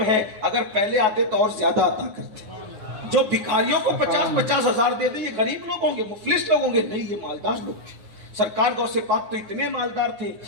ہے، اگر پہلے آتے تو اور زیادہ عطا کرتے. جو بھکاریوں کو 50 ہزار دیتے یہ غریب لوگ ہوں گے، مفلس لوگ ہوں گے؟ نہیں، یہ مالدار لوگ تھے. سرکار غوث پاک تو اتنے مالدار تھے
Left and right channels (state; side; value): late; left; 9.8 ms